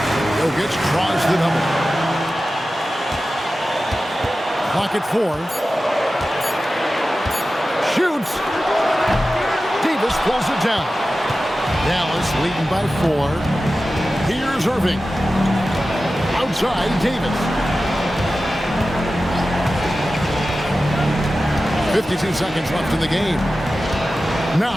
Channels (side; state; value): both; normal; correlation 0.94